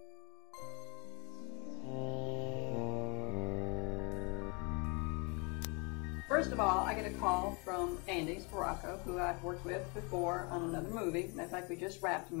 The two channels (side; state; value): right; quieter; 31.2 dB